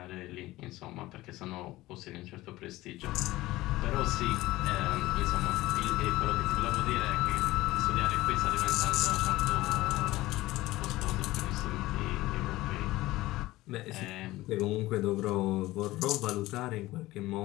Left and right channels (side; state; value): right; quieter; 17.9 dB